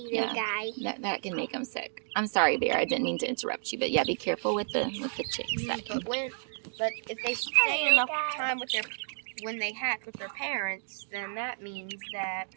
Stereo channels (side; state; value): left; silent; digital silence